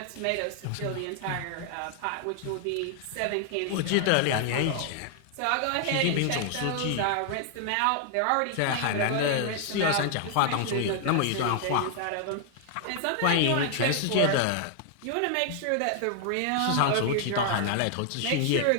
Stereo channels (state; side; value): different; both; correlation 0.00